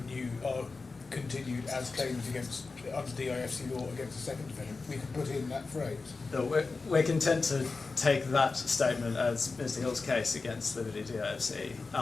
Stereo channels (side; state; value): right; quieter; 4.1 dB